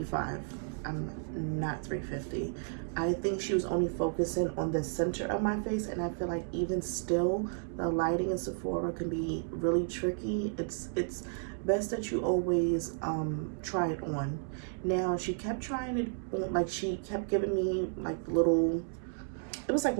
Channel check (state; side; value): silent; left; digital silence